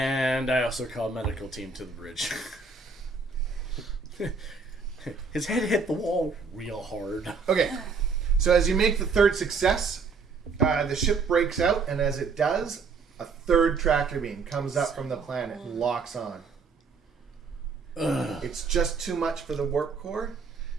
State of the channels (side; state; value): left; quieter; 4.8 dB